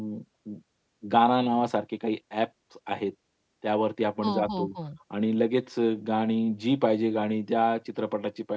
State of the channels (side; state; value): both; identical; correlation 1.00